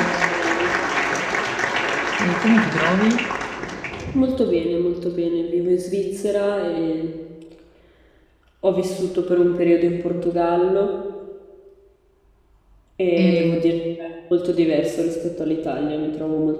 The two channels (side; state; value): both; identical; correlation 1.00